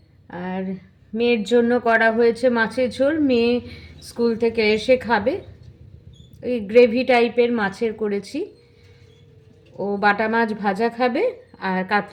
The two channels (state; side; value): identical; both; correlation 1.00